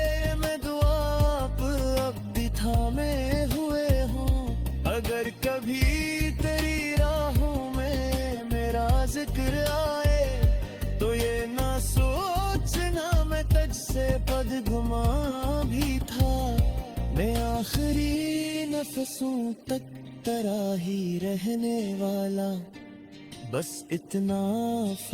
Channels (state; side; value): identical; both; correlation 1.00